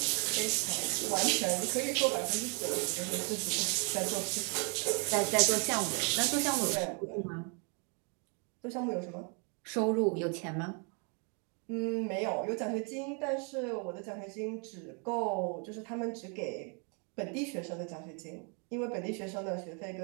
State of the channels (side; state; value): left; quieter; 37.0 dB